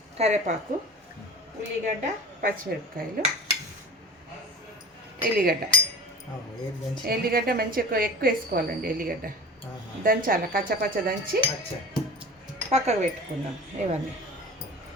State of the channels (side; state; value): both; normal; correlation 0.37